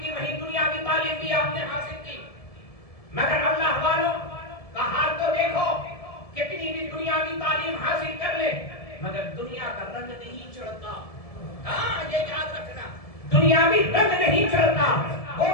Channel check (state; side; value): late; right; 1.7 ms